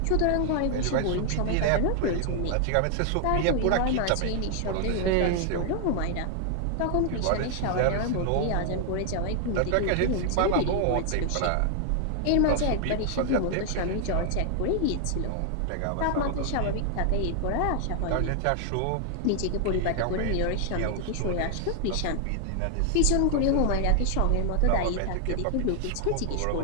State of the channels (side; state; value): both; different; correlation 0.00